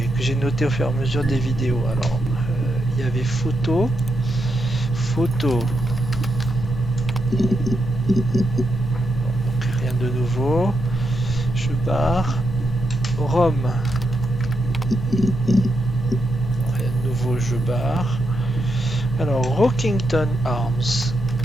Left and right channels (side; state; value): both; normal; correlation 0.83